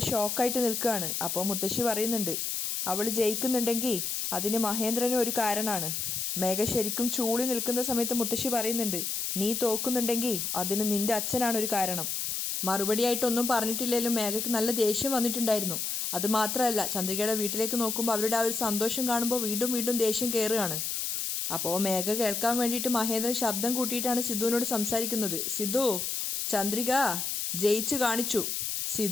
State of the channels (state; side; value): noise; left; hiss, 2 dB below the sound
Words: ഷോക്കായിട്ട് നിൽക്കുകയാണ്. അപ്പോൾ മുത്തശ്ശി പറയുന്നുണ്ട്, അവൾ ജയിക്കുന്നുണ്ടെങ്കിൽ അതിന് മഹേന്ദ്രനും ഒരു കാരണമാണ്. മേഘ ശരിക്കും ചൂളി നിൽക്കുന്ന സമയത്ത് മുത്തശ്ശി പറയുന്നുണ്ട്, നീ തോക്കുന്നുണ്ടെങ്കിൽ അതിന് നിൻ്റെ അച്ഛനാണ് ഒരു കാരണം. മറുപടിയായിട്ടൊന്നും പറഞ്ഞിട്ടില്ലെങ്കിലും മേഘയ്ക്ക് നല്ല ദേഷ്യം വന്നിട്ടുണ്ടായിരുന്നു. അതുമാത്രമല്ല ചന്ദ്രികയുടെ വീട്ടിലേക്ക് നോക്കുമ്പോൾ അവരുടെ ആ ഒരു സന്തോഷം കാണുമ്പോൾ വീണ്ടും വീണ്ടും ദേഷ്യം കയറുകയാണ്. അപ്പോൾ മേഘ കേൾക്കാൻ വേണ്ടിയിട്ട് മഹേന്ദ്രൻ ശബ്ദം കൂട്ടിയിട്ടാണ് സിദ്ധുവിനോട് സംസാരിക്കുന്നത്, സിദ്ധു ചന്ദ്രിക ജയിച്ചു കാണിച്ചു.